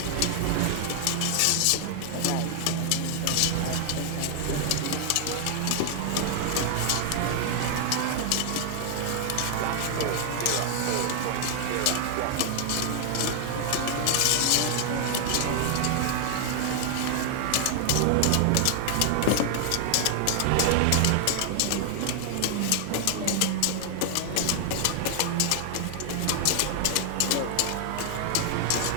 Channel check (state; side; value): different; both; correlation 0.00